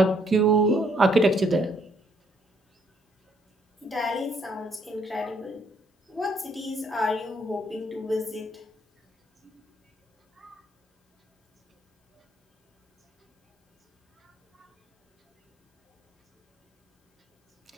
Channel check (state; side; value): normal; both; correlation 0.68